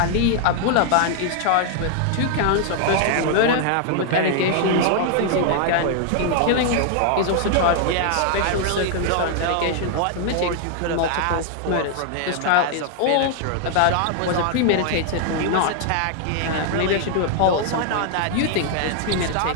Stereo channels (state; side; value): different; both; correlation 0.00